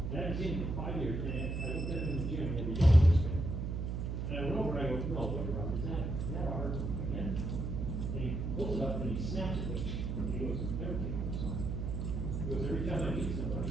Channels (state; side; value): noise; right; hum, 2 dB below the sound